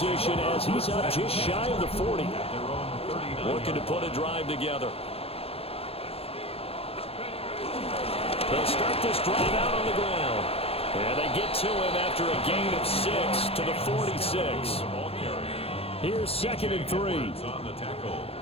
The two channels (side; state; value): right; late; 0.28 ms